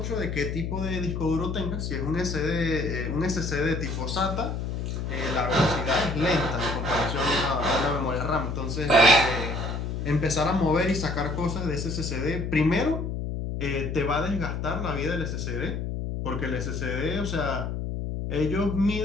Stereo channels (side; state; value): left; noise; hum, 3 dB below the sound